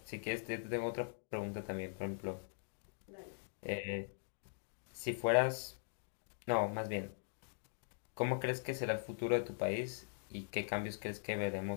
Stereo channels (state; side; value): silent; right; digital silence